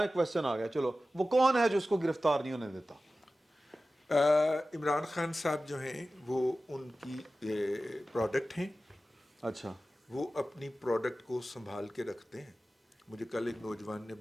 کویسچن آ گیا, چلو وہ کون ہے جو اس کو گرفتار نہیں ہونے دیتا؟ عمران خان صاحب جو ہیں وہ ان کی پروڈکٹ ہیں. اچھا, وہ اپنی پروڈکٹ کو سنبھال کے رکھتے ہیں. مجھے کل ایک نوجوان نے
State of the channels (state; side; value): normal; both; correlation 0.95